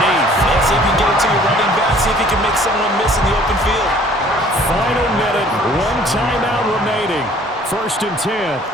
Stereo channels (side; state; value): both; normal; correlation 0.54